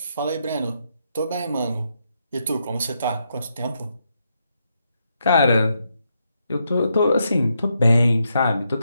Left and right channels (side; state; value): both; inverted; correlation -0.80